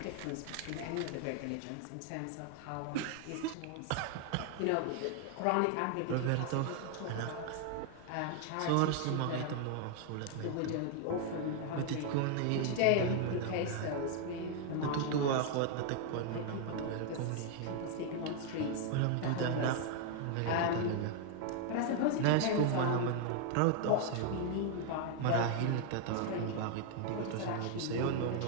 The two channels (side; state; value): both; different; correlation 0.00